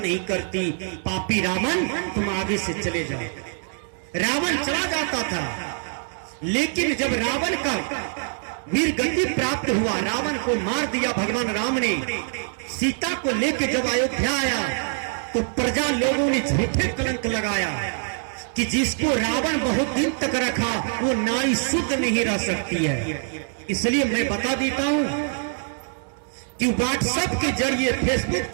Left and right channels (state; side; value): silent; left; 62 dB below the other